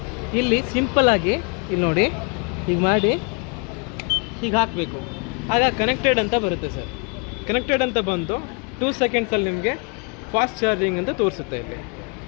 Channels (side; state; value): right; quieter; 34.3 dB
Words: ಇಲ್ಲಿ ಸಿಂಪಲ್ಲಾಗಿ ಇಲ್ಲಿ ನೋಡಿ ಹೀಗೆ ಮಾಡಿ ಹೀಗೆ ಹಾಕಬೇಕು. ಆಗ ಕನೆಕ್ಟೆಡ್ ಅಂತ ಬರುತ್ತೆ ಸರ್. ಕನೆಕ್ಟೆಡ್ ಅಂತ ಬಂದು 2 ಸೆಕೆಂಡ್ಸಲ್ಲಿ ನಿಮಗೆ ಫಾಸ್ಟ್ ಚಾರ್ಜಿಂಗ್ ಅಂತ ತೋರಿಸುತ್ತೆ. ಇಲ್ಲಿ